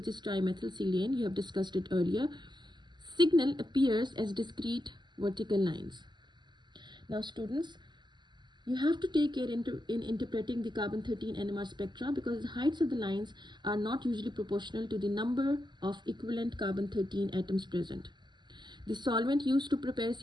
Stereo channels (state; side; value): late; left; 0.21 ms